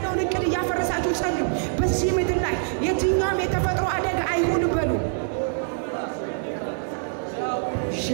እቅድ እያፈረሳችሁ ጸልዩ። በዚህ ምድር ላይ የትኛውም የተፈጥሮ አደጋ አይሁን በሉ።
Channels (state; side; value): silent; left; 60 dB below the other